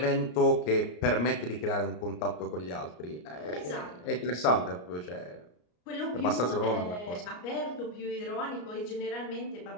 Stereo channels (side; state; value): right; late; 34 ms